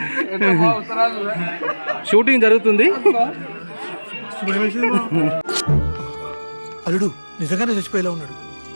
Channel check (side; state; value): both; inverted; correlation -1.00